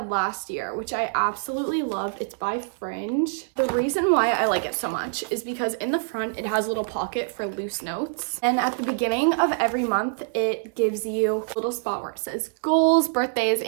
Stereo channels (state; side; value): silent; left; 62 dB below the other